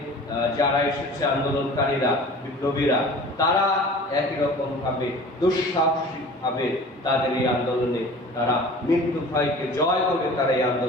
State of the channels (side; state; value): both; normal; correlation 0.42